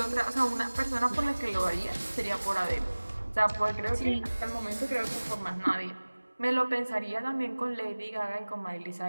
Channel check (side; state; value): both; inverted; correlation -1.00